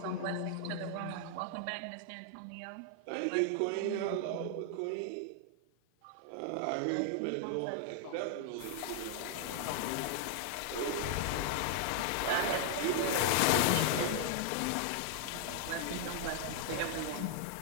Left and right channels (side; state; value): both; different; correlation 0.00